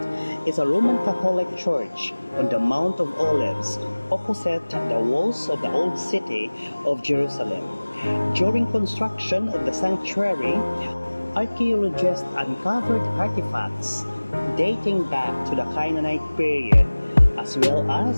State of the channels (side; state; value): both; inverted; correlation -1.00